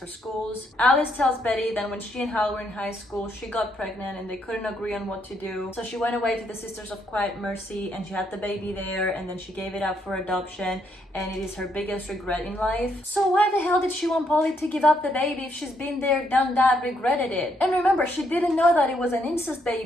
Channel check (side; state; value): both; normal; correlation 0.74